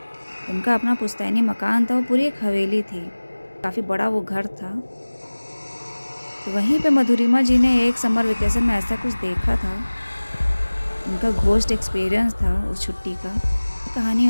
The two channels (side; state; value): both; inverted; correlation -1.00